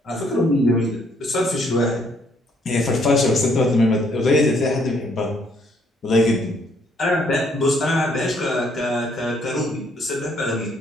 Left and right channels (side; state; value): both; normal; correlation 0.68